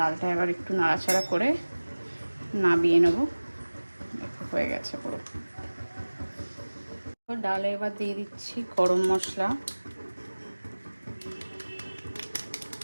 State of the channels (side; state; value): both; inverted; correlation -1.00